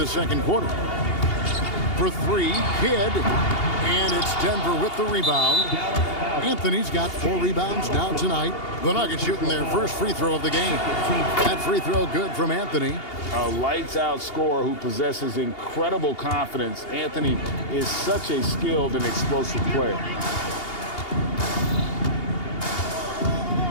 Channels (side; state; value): right; late; 2.8 ms